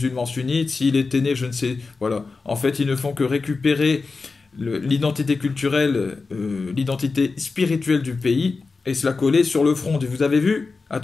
sunnite. S'il était né, je ne sais, voilà. En fait, ils ne font que récupérer l'identité culturelle, l'identité spirituelle du pays et se la coller sur le front. Et vous avez vu?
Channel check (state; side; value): quieter; right; 4.2 dB